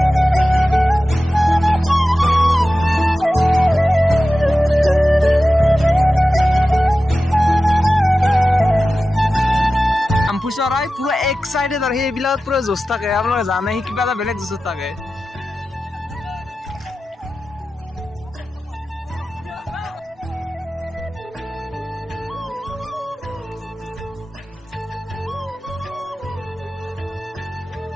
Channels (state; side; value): normal; both; correlation 0.94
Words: চৰাই পুৰা এক্সাইটেড আৰু সেইবিলাক পুৰা জোচ থাকে। আপোনালোকে জানে সি কিবা এটা বেলেগ জোচত থাকে।